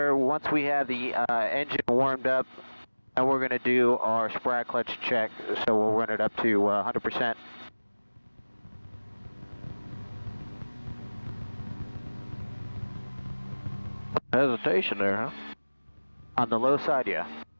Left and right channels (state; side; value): inverted; both; correlation -1.00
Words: once we have the engine warmed up, and we're going to do our sprout clutch check, so we'll run it up to 100%. Hesitation there, huh? On the low side, yeah.